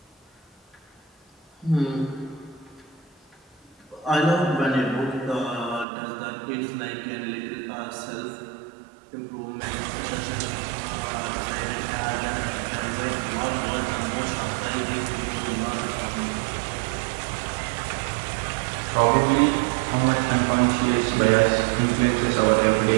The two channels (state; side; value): drops out; left; at 5.9 s